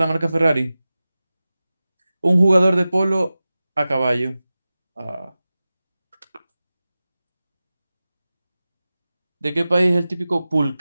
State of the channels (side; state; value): both; inverted; correlation -0.96